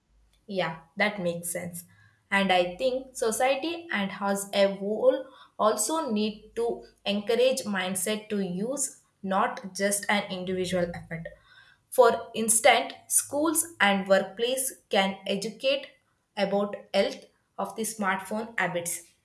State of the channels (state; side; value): identical; both; correlation 1.00